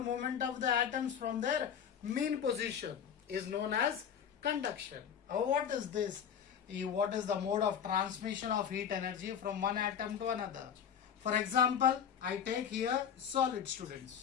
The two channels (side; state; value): right; quieter; 8.2 dB